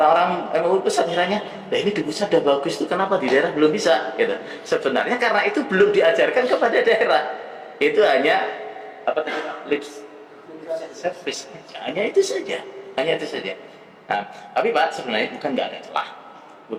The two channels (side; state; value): both; identical; correlation 1.00